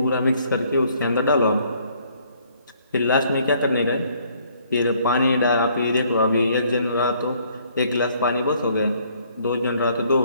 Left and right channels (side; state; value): both; inverted; correlation -0.64